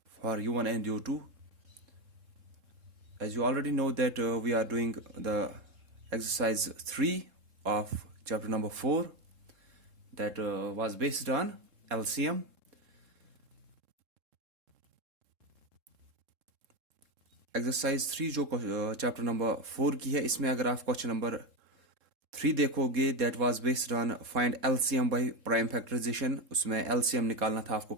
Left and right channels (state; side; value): late; left; 3.7 ms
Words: for U1 and U2. As you already know that we are doing the exercise 3 of chapter number 4 that was based on LCM. Exercise 3 जो chapter number 4 की है, इसमें अगर आप question number 3 देखोगे that was based on find LCM by prime factorization. उसमें LCM निकालना था आपको